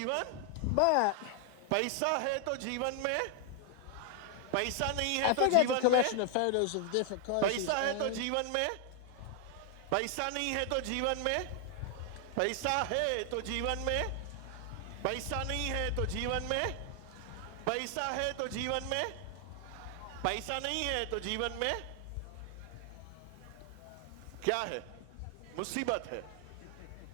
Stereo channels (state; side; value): different; both; correlation 0.00